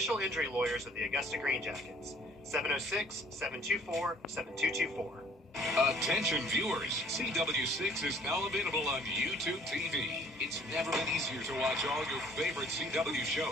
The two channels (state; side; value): normal; both; correlation 0.56